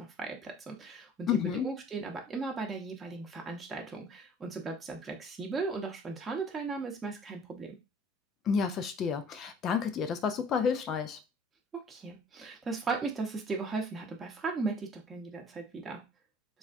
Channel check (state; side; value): normal; both; correlation 0.52